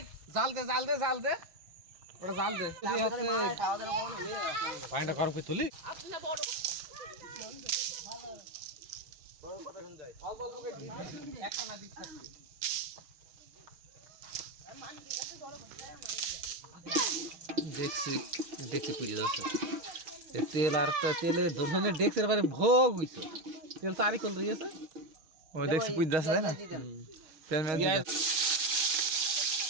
জাল দে ওটা জাল দে পাইনা করো কি তুলি দেখছি পুজো যাচ্ছে তেল আর তেলে ধরনের দেখছে এবারে ভোগ হইছে তেল তারি কল রয়েছে ও দেখছি পুজ দাস তাই না তেল মেল দিতে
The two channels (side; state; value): left; late; 6.4 ms